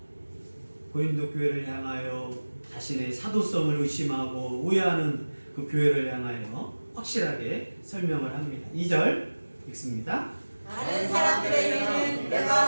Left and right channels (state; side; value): inverted; both; correlation -1.00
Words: 고린도 교회를 향하여 자신의 사도성을 의심하고 오해하는 그 교회를 향하여 확실하게 설명을 합니다. 2절 읽습니다. 다른 사람들에게는 내가